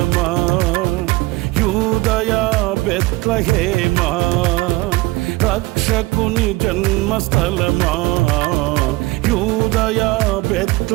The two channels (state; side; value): quieter; left; 21.2 dB